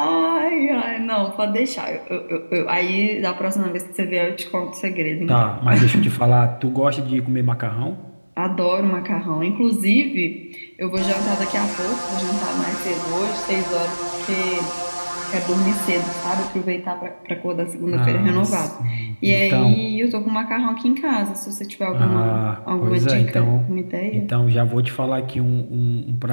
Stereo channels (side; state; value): both; inverted; correlation -1.00